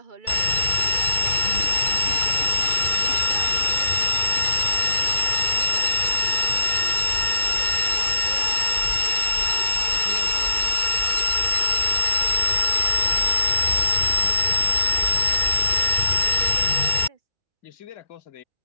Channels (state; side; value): late; right; 2.3 ms